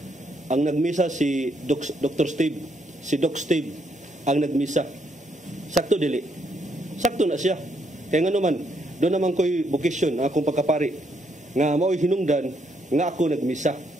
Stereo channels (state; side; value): normal; both; correlation 0.74